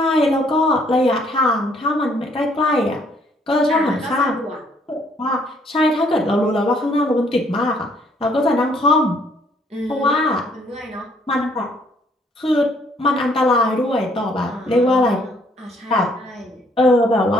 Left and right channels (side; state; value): both; normal; correlation 0.65